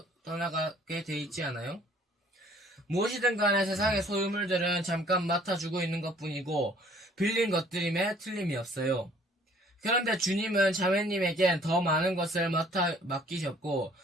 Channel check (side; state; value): both; normal; correlation 0.57